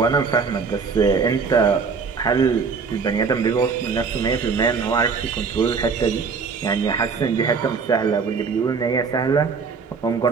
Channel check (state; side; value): quieter; left; 5.3 dB